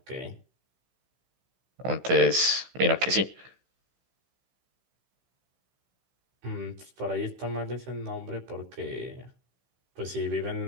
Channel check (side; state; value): left; late; 16 ms